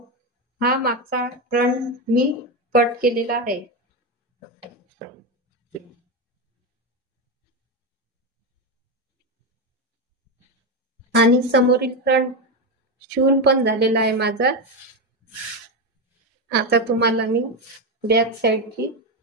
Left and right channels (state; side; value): normal; both; correlation 0.12